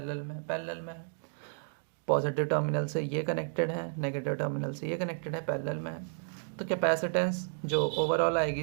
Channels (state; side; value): silent; left; digital silence